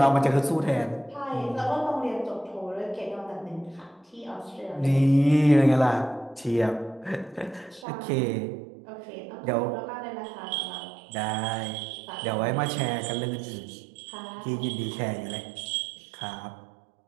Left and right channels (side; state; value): left; drops out; at 7.9 s